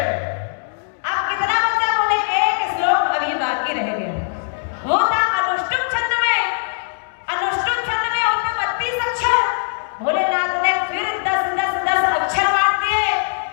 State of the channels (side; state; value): right; silent; digital silence